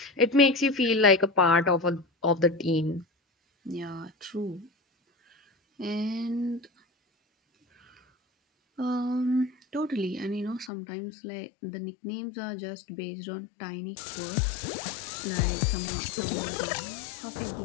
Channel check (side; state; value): right; drops out; at 10.7 s